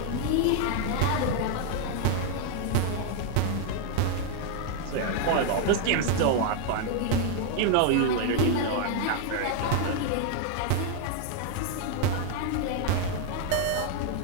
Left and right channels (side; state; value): both; different; correlation 0.00